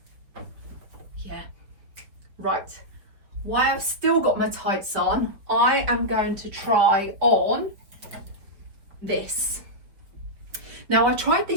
Yeah. Right. While I've still got my tights on, I am going to try on this. Now, I tried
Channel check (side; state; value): left; late; 5.0 ms